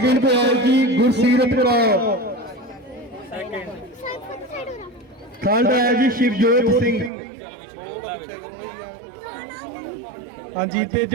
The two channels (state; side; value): drops out; left; at 7.1 s